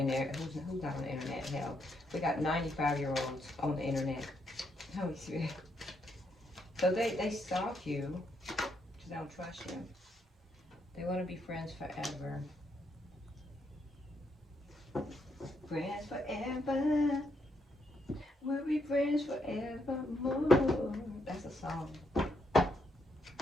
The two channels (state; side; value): normal; both; correlation 0.77